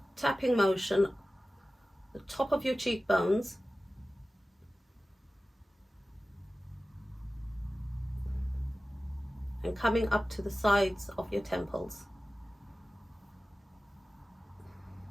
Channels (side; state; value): both; normal; correlation 0.96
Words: tapping motion, the top of your cheekbones, and coming up to the sides of your temples.